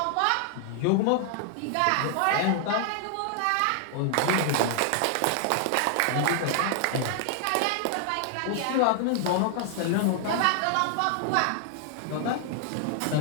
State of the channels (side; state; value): both; different; correlation 0.00